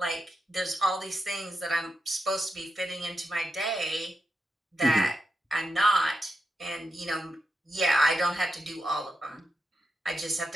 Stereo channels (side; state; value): both; normal; correlation 0.87